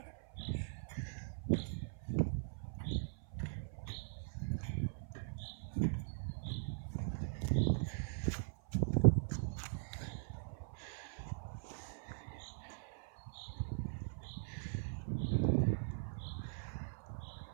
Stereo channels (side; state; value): left; silent; 50 dB below the other